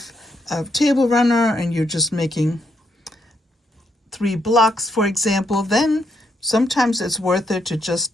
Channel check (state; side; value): normal; both; correlation 0.77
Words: a table runner and you're just making 3 blocks, for example, then sometimes it's worth it to just